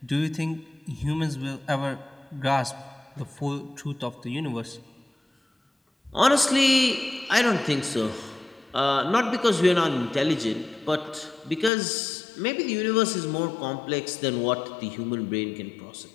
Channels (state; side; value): drops out; right; at 11.7 s